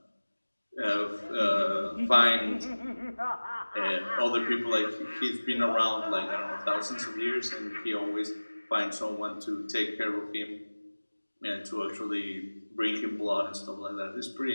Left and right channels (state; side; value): inverted; both; correlation -1.00